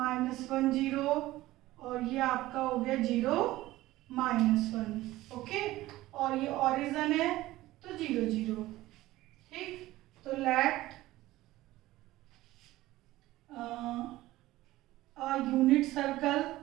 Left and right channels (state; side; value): quieter; left; 16.9 dB